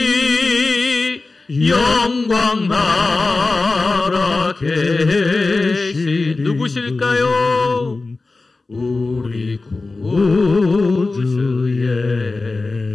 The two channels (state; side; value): quieter; right; 3.5 dB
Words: 영광 나라 계신 누구실까요? 우리 구주